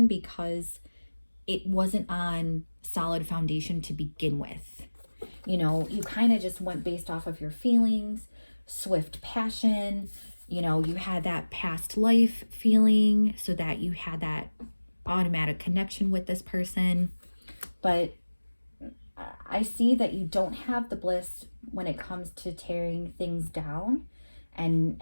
because it wasn't on solid foundation to begin with. You know, you kind of just went based off of your feelings, swift passion. You know, you had that past life feeling, so that you had that automatic connection with this person. But I see that you don't have the bliss when it comes to tearing things down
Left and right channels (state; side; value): inverted; both; correlation -1.00